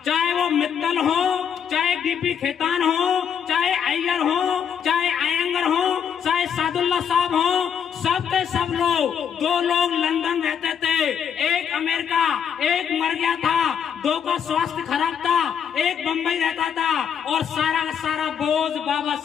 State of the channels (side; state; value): right; quieter; 7.8 dB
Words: चाहे वो मित्तल हो, चाहे DP खेतान हो, चाहे अय्यर हो, चाहे अयंगर हो, चाहे सादुल्ला साहब हो, सब के सब लोग, 2 लोग लंदन रहते थे, एक अमेरिका, एक मर गया था, 2 का स्वास्थ्य खराब था, एक बंबई रहता था, और सारा का सारा बोझ बाबा